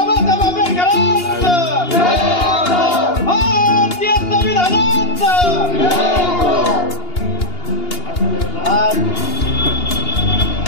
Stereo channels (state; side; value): late; right; 2.8 ms